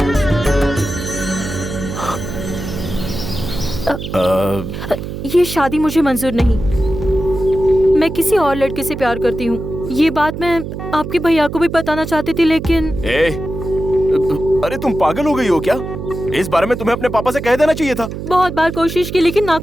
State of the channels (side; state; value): right; noise; hum, 7 dB below the sound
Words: ये शादी मुझे मंजूर नहीं। मैं किसी और लड़के से प्यार करती हूँ। ये बात मैं आपके भैया को भी बताना चाहती थी, लेकिन अरे तुम पागल हो गई हो क्या? इस बारे में तुम्हें अपने पापा से कह देना चाहिए था। बहुत बार कोशिश की लेकिन